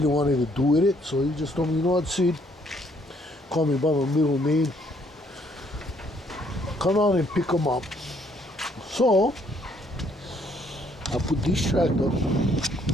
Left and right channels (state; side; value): normal; both; correlation 0.67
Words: wanted to do with it. So he just told me, what, Sid, call me by my middle name, come out and pick them up. So I put this tractor